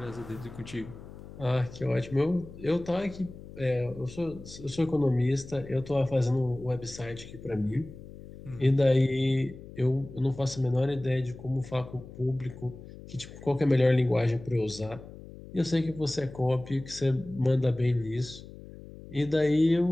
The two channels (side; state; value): left; noise; hum, 16 dB below the sound